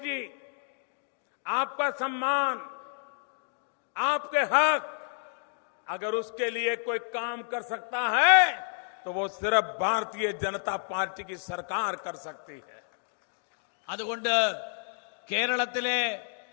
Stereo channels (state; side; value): silent; right; digital silence